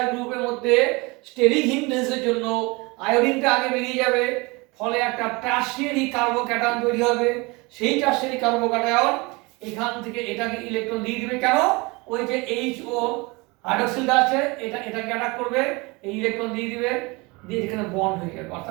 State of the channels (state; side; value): quieter; left; 25.7 dB